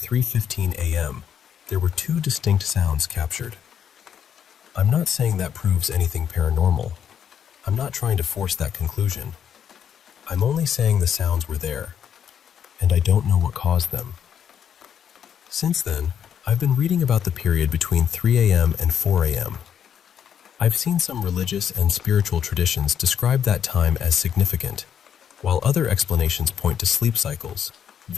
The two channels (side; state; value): right; quieter; 8.5 dB